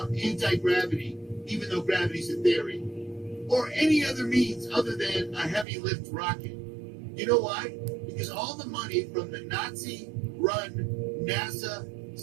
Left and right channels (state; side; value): drops out; left; at 5.7 s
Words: anti-gravity, even though gravity's a theory, or any other means other than a heavy lift rocket? You know why? Because all the money from the Nazi-run NASA